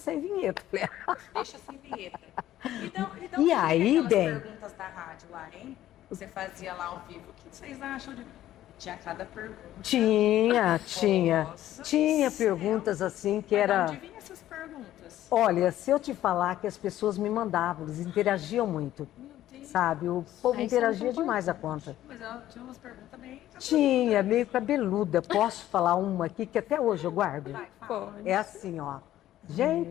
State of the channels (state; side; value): quieter; right; 13.3 dB